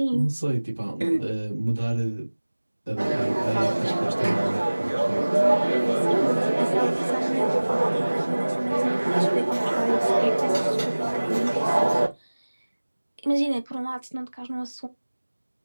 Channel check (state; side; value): inverted; both; correlation -1.00